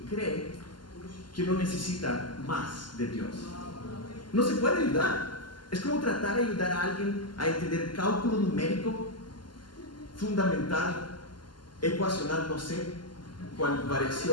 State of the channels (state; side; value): late; right; 0.71 ms